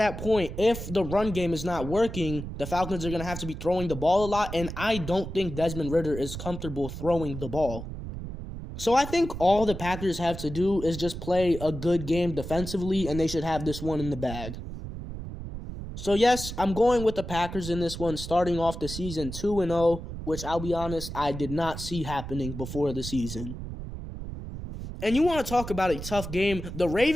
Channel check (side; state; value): right; noise; rumble, 8 dB below the sound